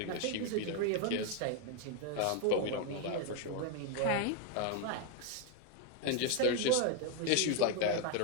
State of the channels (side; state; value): both; different; correlation 0.01